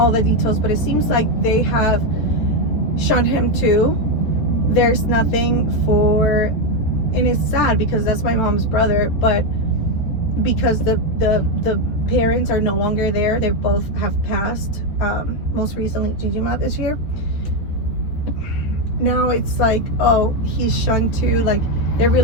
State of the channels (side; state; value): right; late; 13 ms